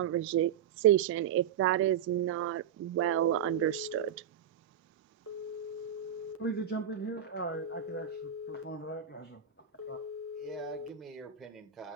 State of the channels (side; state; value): left; quieter; 8.9 dB